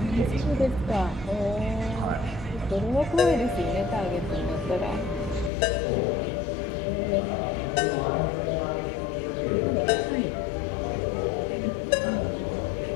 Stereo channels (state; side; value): drops out; right; at 5.5 s